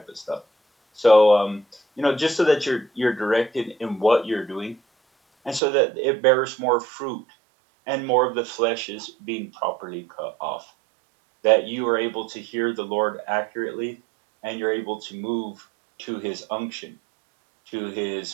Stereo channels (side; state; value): left; drops out; at 5.6 s